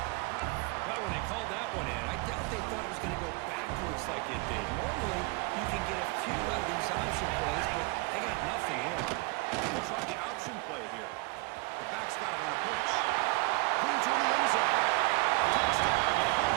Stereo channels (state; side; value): quieter; left; 25.6 dB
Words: Well, when they called that one in, I doubt they thought it was going to go backwards like it did. Normally, you can get a few out of these option plays, but they got nothing here. They'll try the option play here. The back's got it on the pitch. Clean to the end zone. Touchdown.